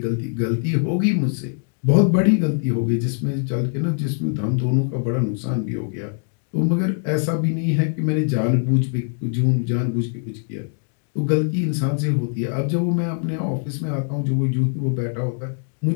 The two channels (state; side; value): silent; right; 64 dB below the other